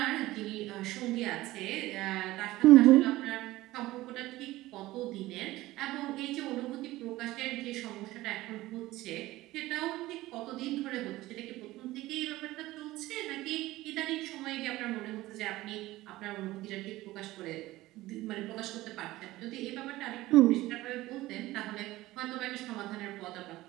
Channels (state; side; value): quieter; left; 17.5 dB